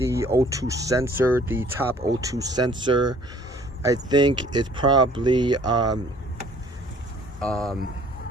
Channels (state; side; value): normal; both; correlation 0.55